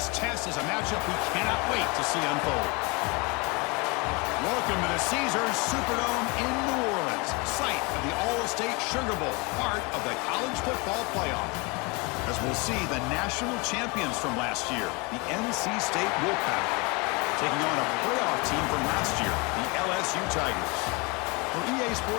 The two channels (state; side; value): quieter; right; 28.4 dB